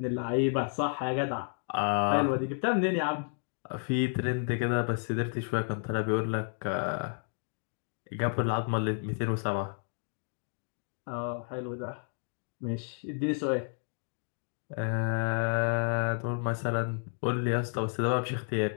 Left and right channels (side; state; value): right; silent; 57 dB below the other